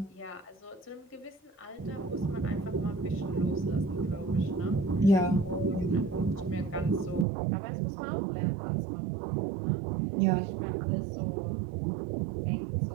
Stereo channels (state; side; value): drops out; left; at 7.2 s